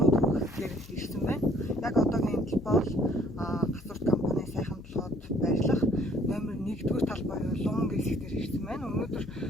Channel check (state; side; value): noise; left; hum, 19 dB below the sound